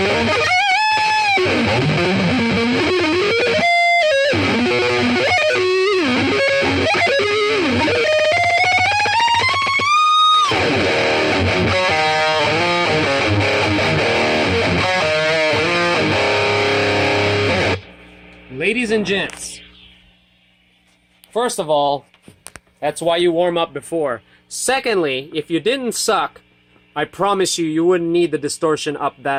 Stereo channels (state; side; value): identical; both; correlation 1.00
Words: ladies and gents, first of all, that's why you warm up before. Secondly, if you didn't suck, I promise you, you wouldn't need the distortion up